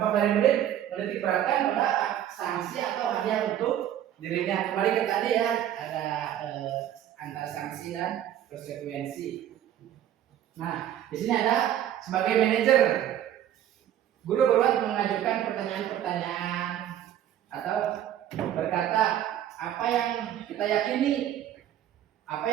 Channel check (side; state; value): left; quieter; 11.2 dB